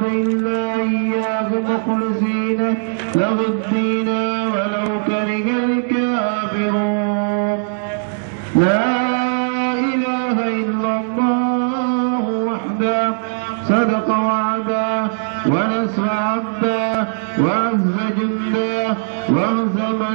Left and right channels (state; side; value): silent; left; 64 dB below the other